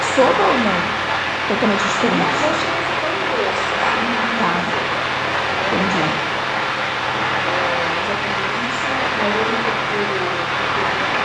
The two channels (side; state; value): both; identical; correlation 1.00